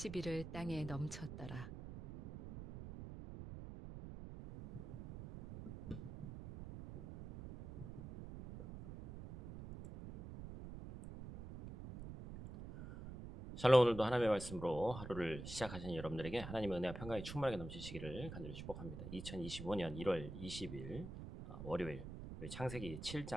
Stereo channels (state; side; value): noise; right; rumble, 10 dB below the sound